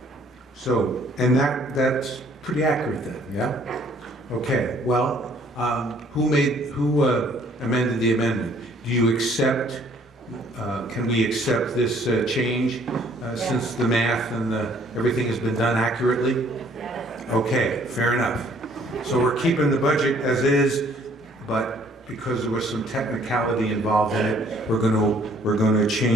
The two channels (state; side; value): normal; both; correlation 0.60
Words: So, and that's pretty accurate then, yeah? Okay, well, who amended the amendment? Do you accept, can we accept this change since the math and everything has been done accurately? Okay, fair enough. So we're keeping the budget as is, but because there was some technicality involved in it, we're going to